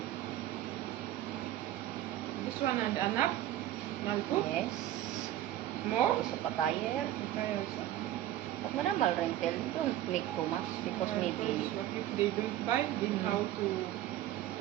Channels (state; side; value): quieter; left; 13.4 dB